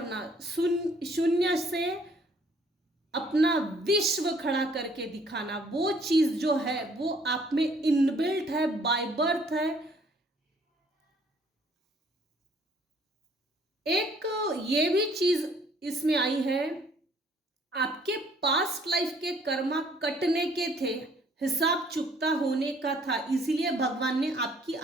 शून्य से अपना विश्व खड़ा करके दिखाना, वो चीज जो है वो आप में इनबिल्ट है, बाय बर्थ है। एक ये भी चीज इसमें आई है, आपके पास्ट लाइफ के कर्मा कटने के थे, हिसाब चुकता होने का था, इसीलिए भगवान ने आपकी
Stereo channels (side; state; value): both; normal; correlation 0.61